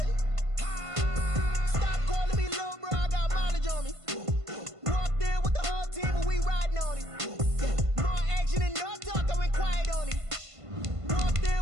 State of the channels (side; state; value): left; late; 1.5 ms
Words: Stop calling me little bro. I got mileage on me. Walked in with the whole team and we riding on it. More action and no talk. I went quiet on it. Walked